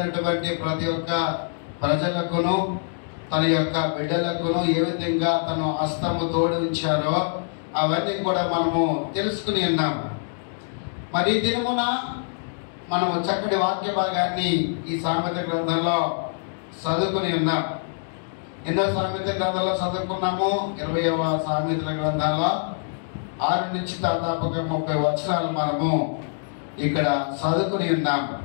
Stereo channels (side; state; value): right; silent; digital silence